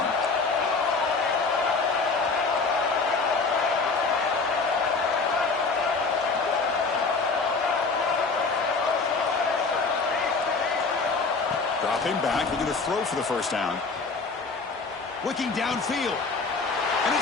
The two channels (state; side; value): quieter; right; 4.3 dB